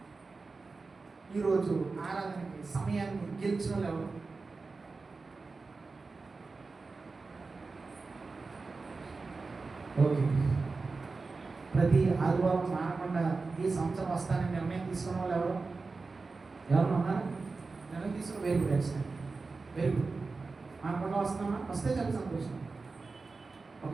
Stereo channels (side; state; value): left; quieter; 4.0 dB